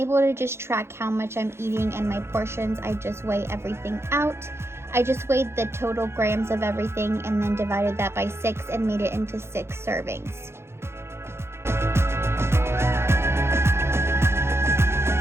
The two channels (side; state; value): left; late; 0.12 ms